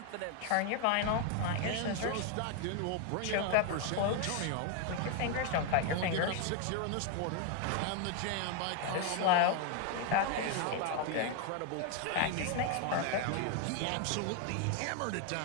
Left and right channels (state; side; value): different; both; correlation 0.00